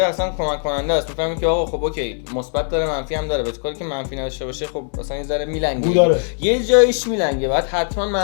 کمک کننده است. میفهمی که آقا خب اوکی مثبت داره منفی هم داره، ولی کاری که منفی نداشته باشه خب اصلا یه ذره میلنگه، یه جایش میلنگه، بعد حتما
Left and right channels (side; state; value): right; silent; 65 dB below the other